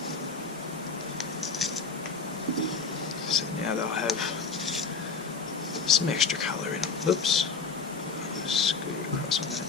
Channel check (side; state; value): right; quieter; 4.9 dB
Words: So now they'll have some extra colour in them. Whoops. Scoot across on that.